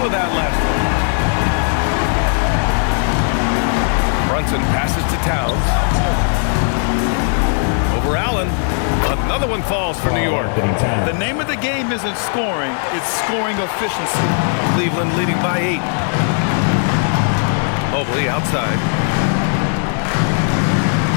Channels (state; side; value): silent; right; 59 dB below the other